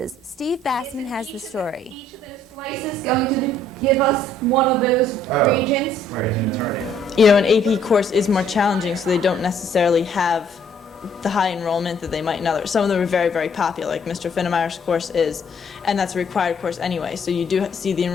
Steve Bassman has the story. Each of those slices is going to give us one of those regions. You know, an AP course is more challenging, so they don't necessarily have the high enrollment that they might in others. Some of them are very, very popular, like Mr. Finnemeyer's course is, and that's a required course anyway, so you do see the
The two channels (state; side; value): normal; both; correlation 0.63